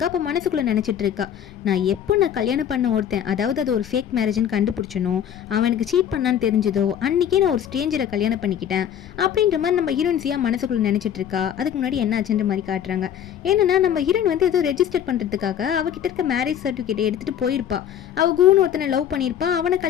அப்போ மனசுக்குள்ளே நினச்சிட்டு இருக்கா, நான் கல்யாணம் பண்ண ஒருத்தன், அதாவது அது ஒரு ஃபேக் மேரேஜ்னு கண்டுபிடிச்சனோ, அவனுக்கு சீட் பண்ணான்னு தெரிஞ்சதோ அன்றைக்கே நான் ஒரு ஸ்ட்ரேஞ்சரை கல்யாணம் பண்ணிக்கிட்டேன் அப்படின்ற மாதிரி நம்ம ஹீரோயின்ஸியாக மனசுக்குள்ள நினைச்சிட்டு இருக்கா. அதுக்கு முன்னாடி என்ன ஆச்சுன்ற மாதிரி காட்டுறாங்க. என்னன்னா நம்ம ஹீரோயின் வந்து ஏதோ ரெஜிஸ்டர் பண்றதுக்காக அவகிட்ட இருக்க மேரேஜ் சர்டிஃபிகேட் எடுத்துட்டு போயிருப்பா. அவ கூன்னு ஒருத்தனை லவ் பண்ணியிருப்பா, அவனை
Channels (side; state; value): right; quieter; 9.6 dB